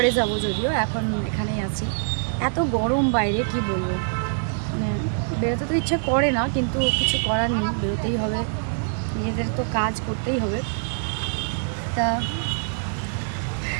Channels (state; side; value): silent; left; digital silence